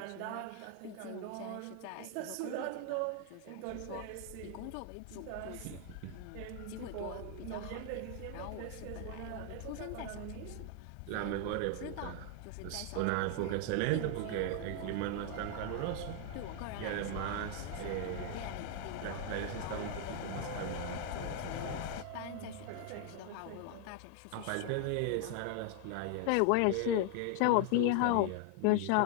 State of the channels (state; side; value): different; both; correlation 0.00